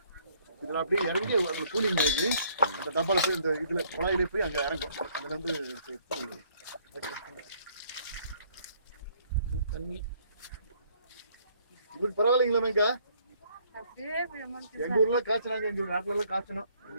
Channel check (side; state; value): both; inverted; correlation -0.63